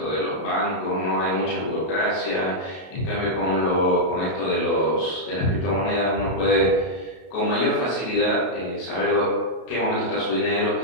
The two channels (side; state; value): right; late; 33 ms